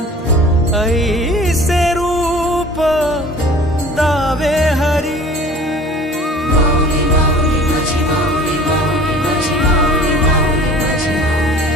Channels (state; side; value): normal; both; correlation 0.46